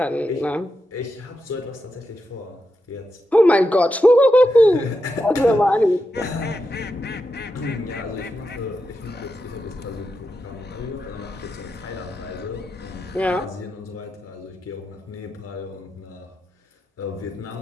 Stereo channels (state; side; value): normal; both; correlation 0.87